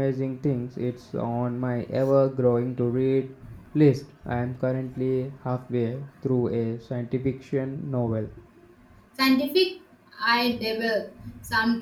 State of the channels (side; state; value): both; identical; correlation 1.00